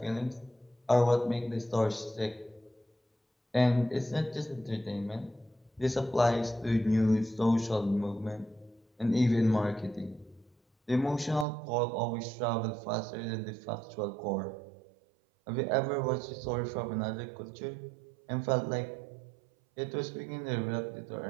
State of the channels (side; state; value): left; drops out; at 11.5 s